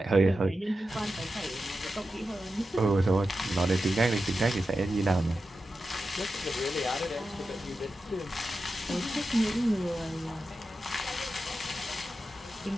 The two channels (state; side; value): normal; both; correlation 0.91